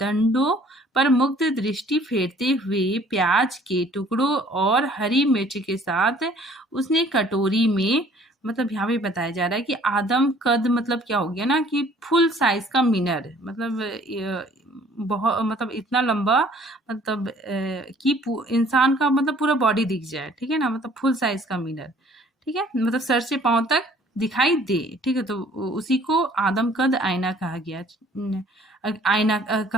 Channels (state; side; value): normal; both; correlation 0.56